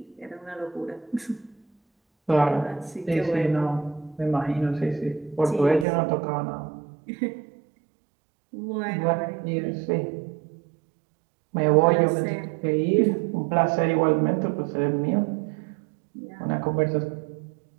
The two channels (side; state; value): left; drops out; at 5.9 s